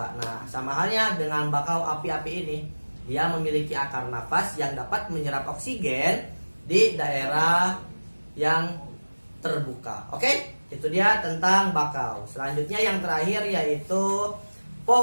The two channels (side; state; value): both; inverted; correlation -1.00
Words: Nah, sama halnya dengan bakau api-api ini, dia memiliki akar nafas yang dapat menyerap oksigen di daerah yang terbuka. Oke? Itu dia tentang bakau. Selanjutnya yang terakhir yaitu